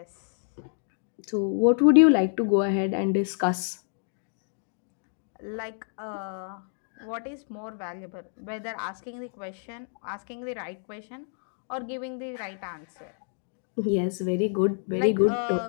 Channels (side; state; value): right; silent; digital silence